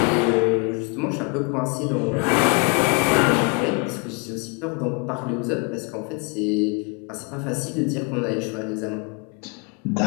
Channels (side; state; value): right; quieter; 33.6 dB